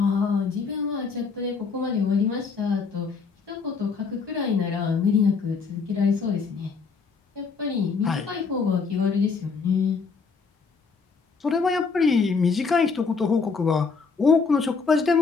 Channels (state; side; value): quieter; right; 5.0 dB